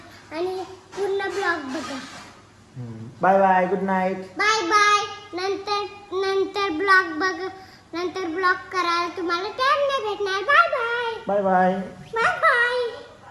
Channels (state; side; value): identical; both; correlation 1.00